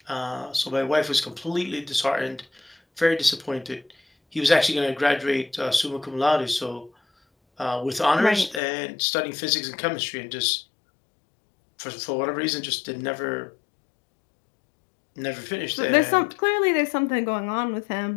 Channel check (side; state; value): right; drops out; at 8.6 s